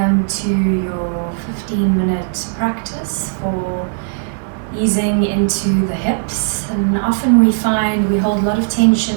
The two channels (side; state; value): left; silent; digital silence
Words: to your 15-minute practice for easing into the hips. And often we find we hold a lot of